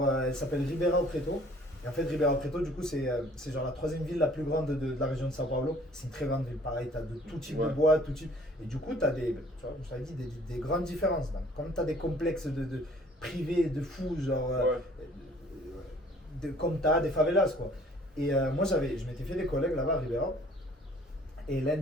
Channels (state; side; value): normal; both; correlation 0.55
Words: Elle s'appelle Ribeirão Preto. Et en fait, Ribeirão Preto, du coup, c'est genre la 3e ville la plus grande de la région de São Paulo. C'est une très grande ville. Pareil, tu as de tout type de bois, tout type. Et du coup, tu as des, tu vois, je t'avais dit, des grandes différences. Donc, comme tu as des complexes de privés, de fous, genre. Comme tu as des favelas, quoi. Et moi, je m'étais fait des collègues là-bas à Ribeirão. Et l'un